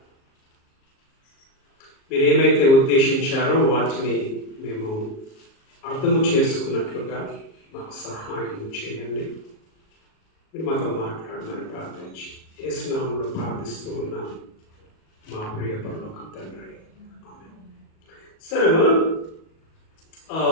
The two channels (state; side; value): late; right; 37 ms